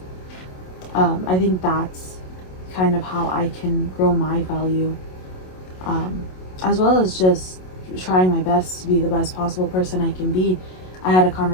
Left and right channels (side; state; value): right; late; 27 ms